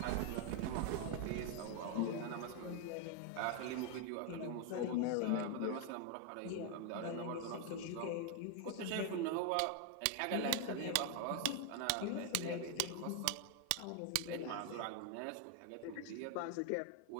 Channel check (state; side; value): different; both; correlation 0.01